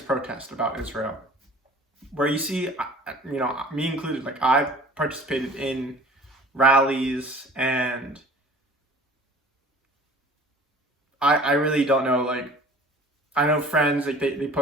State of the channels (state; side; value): normal; both; correlation 0.47